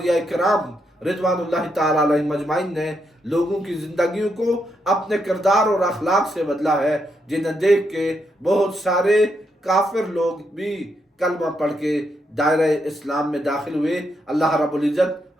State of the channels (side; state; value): both; normal; correlation 0.80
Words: کرام رضوان اللہ تعالیٰ علیہ مجمعین نے لوگوں کی زندگیوں کو اپنے کردار اور اخلاق سے بدلا ہے، جنہیں دیکھ کے بہت سارے کافر لوگ بھی کلمہ پڑھ کے دائرہ اسلام میں داخل ہوئے۔ اللہ رب